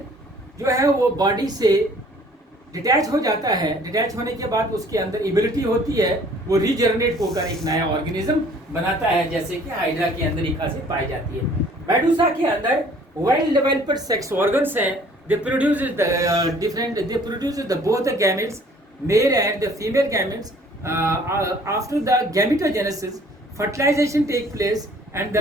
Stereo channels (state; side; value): normal; both; correlation 0.55